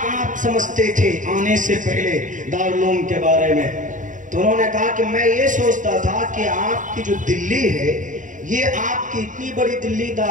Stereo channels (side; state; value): left; late; 0.37 ms